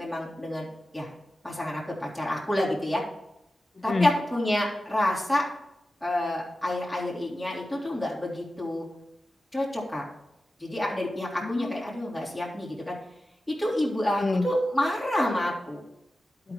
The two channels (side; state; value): both; normal; correlation 0.93